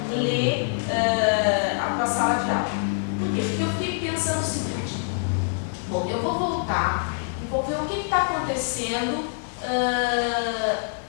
ler a tua sala de aula. Por quê? Porque eu fiquei pensando o seguinte, bom, eu vou voltar e vou ver o que está acontecendo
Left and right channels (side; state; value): right; silent; 62 dB below the other